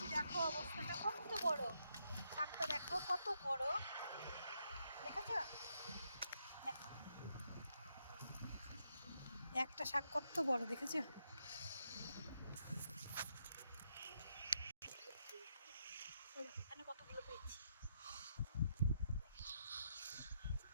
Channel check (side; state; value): both; inverted; correlation -0.79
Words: দেখো অবস্থাটা কত বড়, শাকটা দেখো কত বড়, দেখেছো? একটা শাক কত বড় দেখেছো? এখানে কতগুলো পেয়েছি,